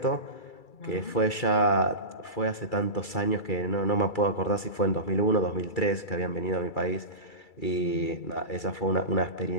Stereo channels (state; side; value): late; right; 2.3 ms